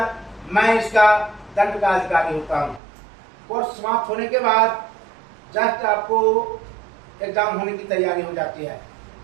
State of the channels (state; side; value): drops out; left; at 2.8 s